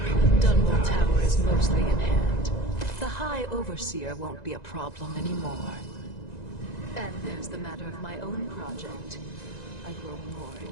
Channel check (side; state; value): right; late; 1.9 ms